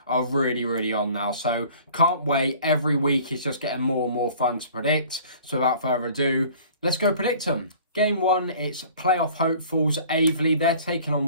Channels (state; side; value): inverted; both; correlation -0.49